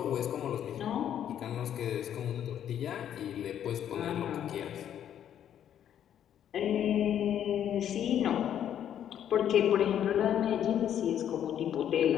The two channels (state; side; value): quieter; right; 10.0 dB